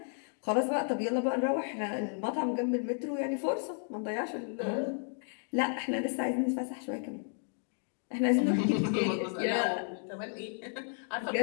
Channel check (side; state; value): right; silent; 56 dB below the other